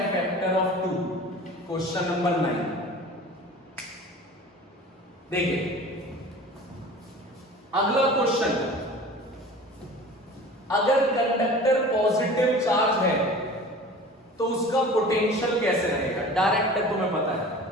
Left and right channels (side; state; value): both; normal; correlation 0.40